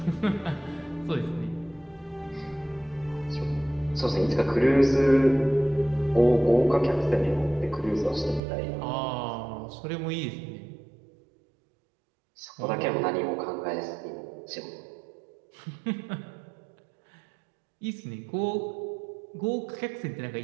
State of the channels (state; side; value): drops out; left; at 8.4 s